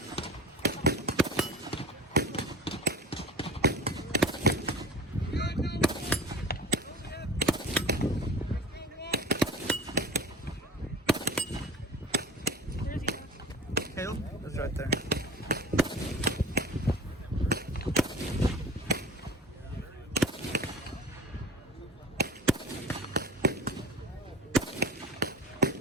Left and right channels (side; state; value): both; normal; correlation 0.37